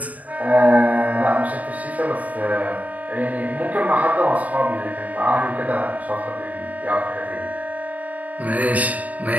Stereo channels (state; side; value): late; left; 0.072 ms